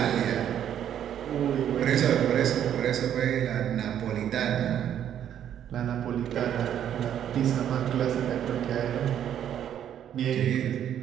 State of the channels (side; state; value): left; quieter; 10.0 dB